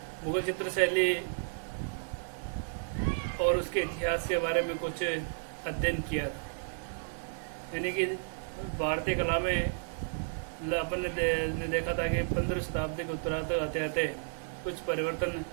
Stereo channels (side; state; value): left; silent; 56 dB below the other